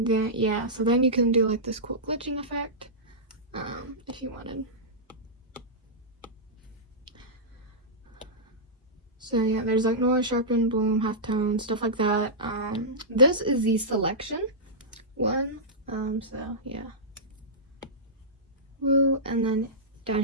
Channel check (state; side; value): normal; both; correlation -0.14